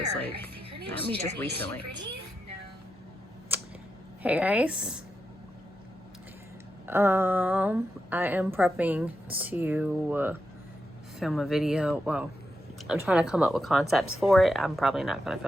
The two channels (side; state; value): both; normal; correlation 0.86